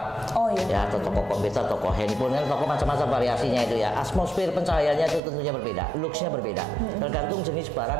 Oh iya. Ya, atau toko komputer, toko handphone, kan toko macam-macam variasinya itu ya. Atmosfer pencahayaannya itu tentunya berbeda, luxnya berbeda. Tergantung jenis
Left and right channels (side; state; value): left; drops out; at 5.2 s